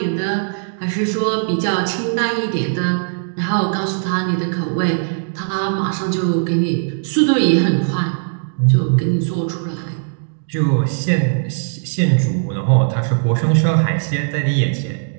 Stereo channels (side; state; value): left; silent; digital silence